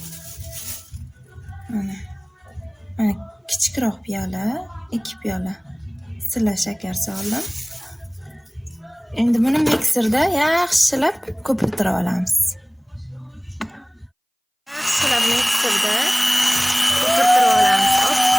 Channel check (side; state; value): both; identical; correlation 1.00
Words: Mana kichikroq piyola 2 piyola silla shakar soldim. Endi buni mikserda yaxshilab ko'pirtirib olamiz. Yaxshilab mikserda ko'pirtirib olamiz,